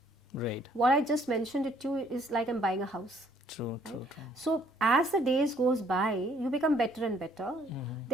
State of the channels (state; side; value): normal; both; correlation 0.63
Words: Right. What I just mentioned it to you is like I'm buying a house. True. So as the days goes by, you become better and better.